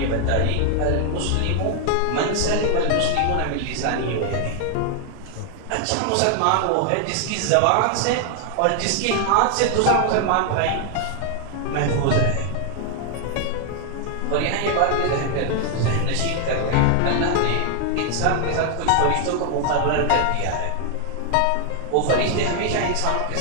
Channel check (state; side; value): different; both; correlation 0.00